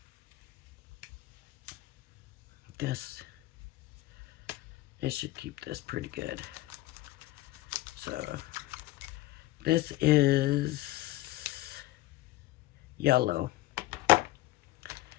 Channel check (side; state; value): right; quieter; 17.4 dB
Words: It should keep this pretty good. So this is yellow.